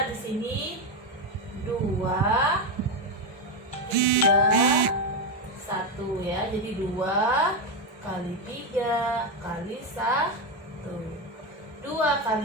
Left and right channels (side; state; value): both; normal; correlation 0.09